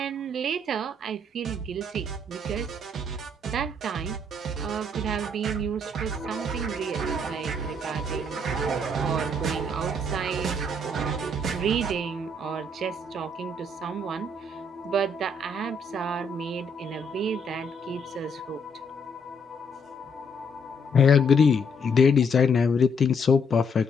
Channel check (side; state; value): both; normal; correlation 0.70